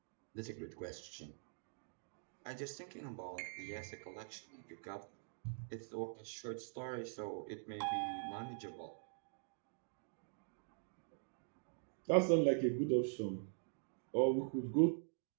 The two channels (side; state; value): left; silent; digital silence